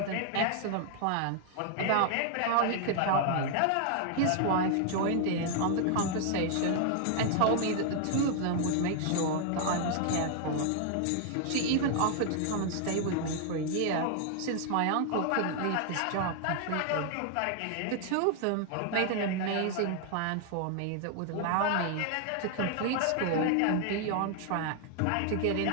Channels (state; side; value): different; both; correlation 0.00